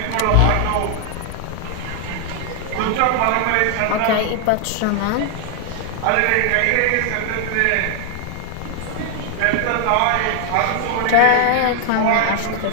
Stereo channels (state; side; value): different; both; correlation 0.00